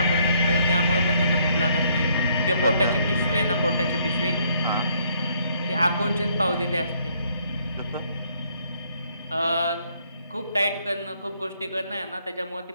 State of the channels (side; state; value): both; inverted; correlation -0.68